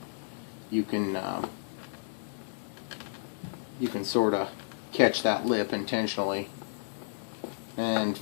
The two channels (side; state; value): right; silent; digital silence